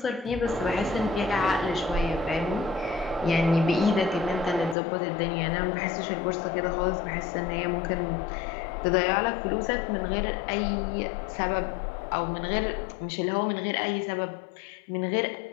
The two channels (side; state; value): right; drops out; at 4.8 s